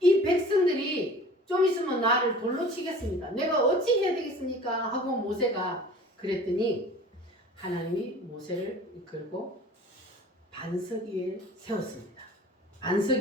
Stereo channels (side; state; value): both; normal; correlation 0.44